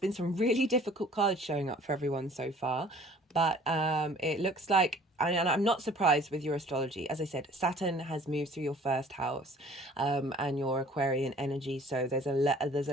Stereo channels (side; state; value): both; normal; correlation 0.52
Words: some really difficult cards showing up for everyone so far, but it looks like, and I'm not surprised with your astrology. As I said, Saturn has moved through your first house, and your Aquarian energy. So there's a